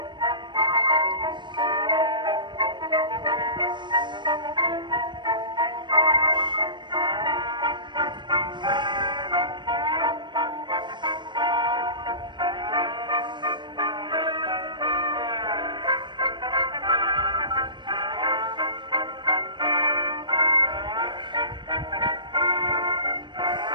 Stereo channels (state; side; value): late; left; 0.22 ms